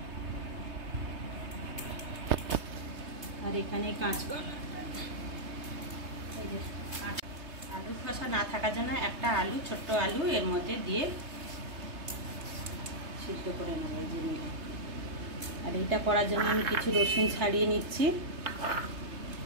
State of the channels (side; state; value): left; late; 3.3 ms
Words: আর এখানে কাঁচকলা, আলুর খোসা না থাকার জন্য একটা আলু, ছোট্ট আলু এর মধ্যে দিয়ে সিদ্ধ করে নেব এই যে নিয়ে। আর এটা করার জন্য আমি কিছু রসুন ছাড়িয়ে নিচ্ছি,